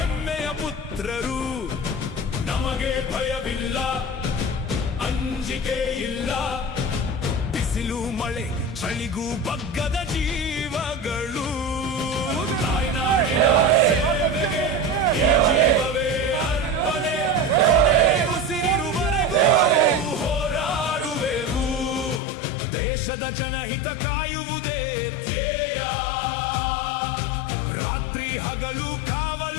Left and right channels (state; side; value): drops out; right; at 22.2 s